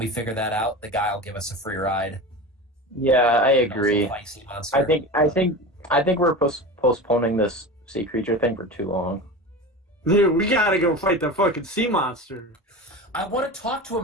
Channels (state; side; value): normal; both; correlation 0.29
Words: figure that out, the guy will give us a free ride. Yeah, I And also agree. fight sea monster. I think we're postponing this sea creature thing for too long. Dude, we gotta go fight the fucking sea monster. I want to talk to